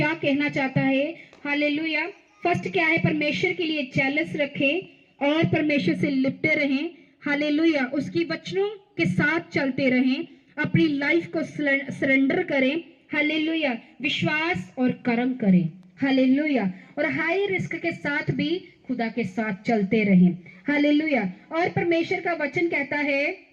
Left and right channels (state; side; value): identical; both; correlation 1.00